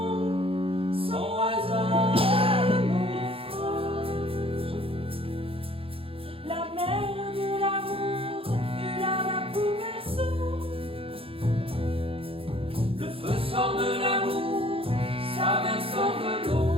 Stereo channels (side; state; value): left; late; 0.27 ms